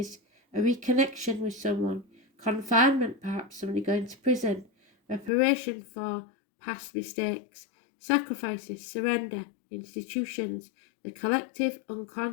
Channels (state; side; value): drops out; right; at 5.3 s